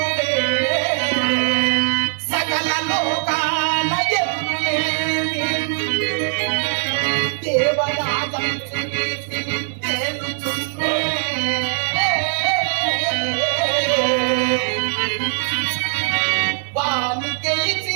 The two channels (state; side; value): silent; left; 65 dB below the other